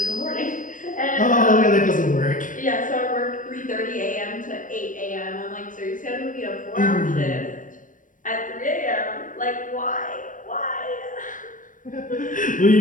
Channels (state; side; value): late; right; 0.38 ms